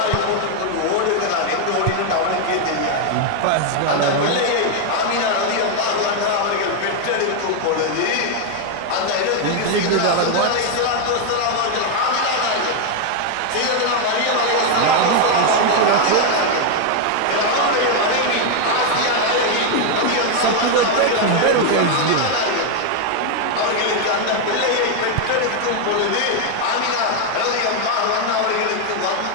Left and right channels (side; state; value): both; different; correlation 0.01